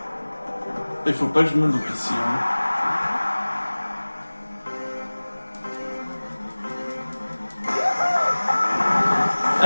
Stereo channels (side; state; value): both; inverted; correlation -1.00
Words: Il faut pas que je me loupe ici. Hein.